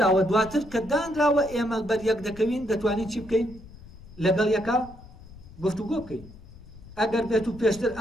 دواتر کە دانراوە ئێمە بەریەک دەکەوین دەتوانین چی بکەین؟ لەگەڵ یەکە گفتوگۆ بکەین. ئەگەر بێت و پێشتر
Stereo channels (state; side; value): noise; left; rumble, 19 dB below the sound